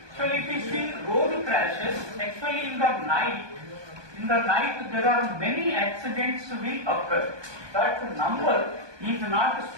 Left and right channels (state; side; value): late; left; 1.2 ms